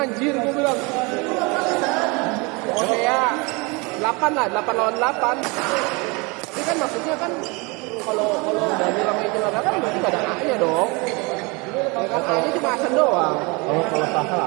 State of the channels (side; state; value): left; quieter; 28.0 dB